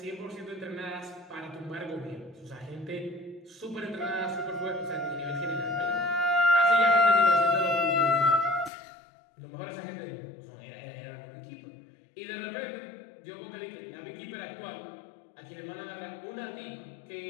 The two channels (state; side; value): drops out; right; at 8.7 s